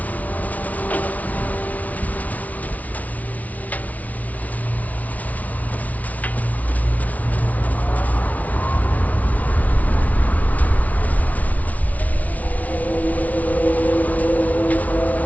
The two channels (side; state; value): right; late; 0.072 ms